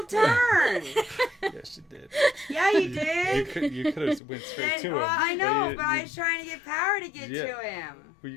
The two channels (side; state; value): right; drops out; at 4.2 s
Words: turn. Yes, you did. Yeah, you You did. could have went straight to him. Well, I know, you- but I was trying to get power to get Yeah. to him. Well, you